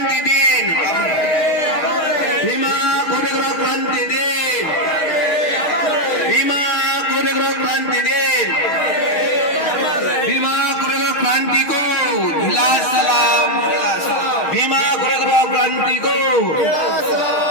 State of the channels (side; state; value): right; late; 6.3 ms